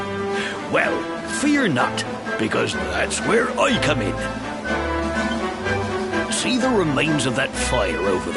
Well, fear not, because that's where I come in. See the remains of that fire over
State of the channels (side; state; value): both; identical; correlation 1.00